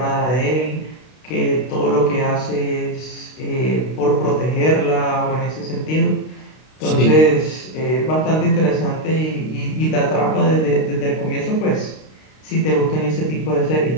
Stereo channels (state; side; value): late; right; 32 ms